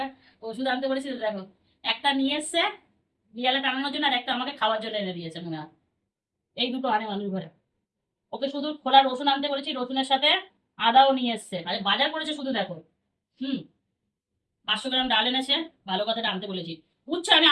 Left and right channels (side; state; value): both; identical; correlation 1.00